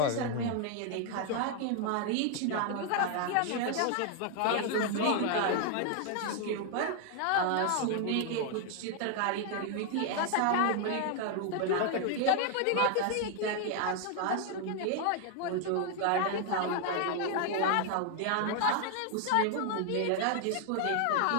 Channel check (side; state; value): both; different; correlation 0.00